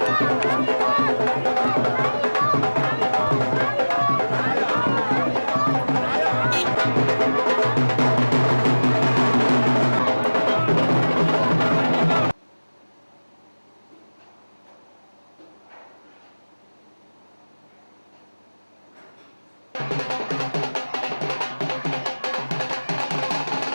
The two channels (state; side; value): inverted; both; correlation -1.00